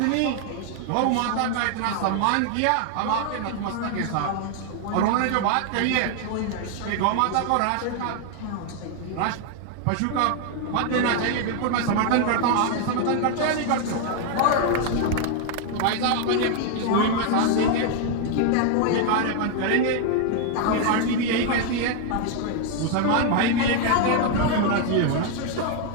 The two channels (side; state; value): both; different; correlation 0.00